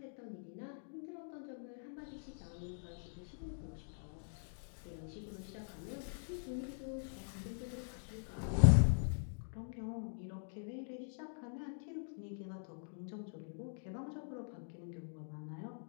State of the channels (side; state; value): right; silent; digital silence